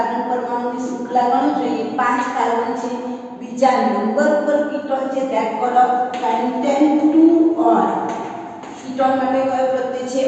परमाणुनी श्रृंखला गणो જોઈએ 5 कार्बन છે બીજા નંબર પર કીટોન છે that call of pentane 2 on ketone માટે કયો પ્રત્યય છે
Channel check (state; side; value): identical; both; correlation 1.00